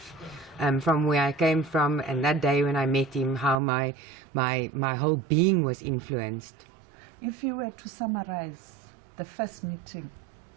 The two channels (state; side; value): drops out; left; at 3.6 s